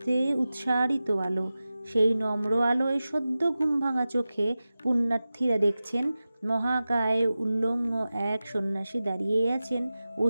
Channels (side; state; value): both; inverted; correlation -0.95